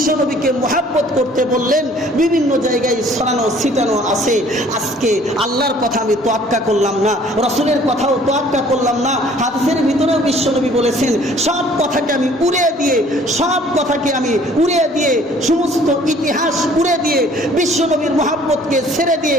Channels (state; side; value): normal; both; correlation 0.55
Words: নবীকে মুহাব্বত করতে বললেন, বিভিন্ন জায়গায় ছড়ানো ছিটানো আছে। আজকে আল্লাহর কথা আমি তোয়াক্কা করলাম না, রসুলের কথাও তোয়াক্কা করলাম না, হাদিসের ভিতরেও বিশ্ব নবী বলেছেন সব কথাকে আমি উড়িয়ে দিয়ে সমস্ত ইতিহাস উড়ে দিয়ে বিশ্ব নবীর মুহাব্বতকে ছেড়ে দিয়ে